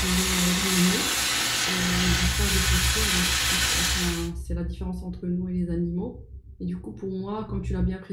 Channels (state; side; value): identical; both; correlation 1.00